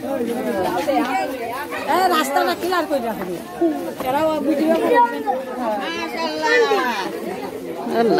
রাস্তাটা ক্লিয়ার করে রাখবে।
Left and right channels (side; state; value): both; identical; correlation 1.00